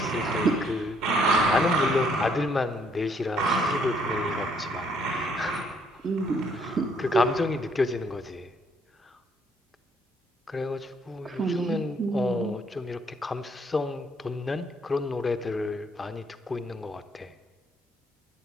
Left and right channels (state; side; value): normal; both; correlation 0.67